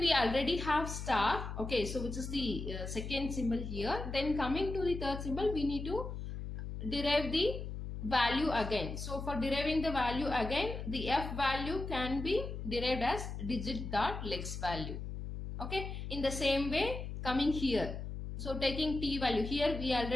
already have star, okay, so which is the second symbol here. Then coming to the third symbol, we need to derive the value again. So for deriving the value again, the F value can be derived as digit dot lex value, okay. In the same way, coming here, so taking t value, here we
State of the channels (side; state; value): left; noise; hum, 6 dB below the sound